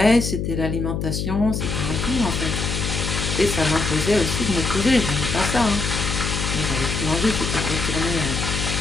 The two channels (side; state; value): left; noise; hum, 2 dB below the sound